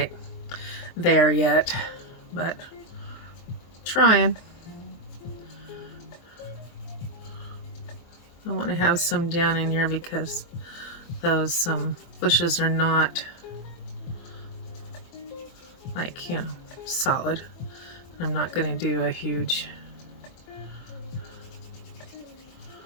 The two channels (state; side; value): late; right; 23 ms